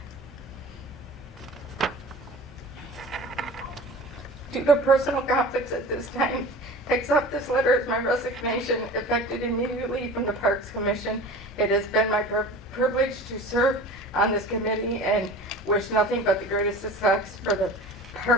due to personal conflicts at this time, accept this letter as my resignation, effective immediately from the Parks Commission. It has been my privilege to serve on this committee and wish nothing but the greatest success for the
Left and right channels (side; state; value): both; normal; correlation 0.38